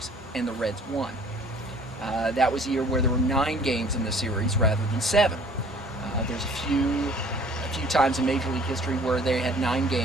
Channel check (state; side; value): normal; both; correlation 0.53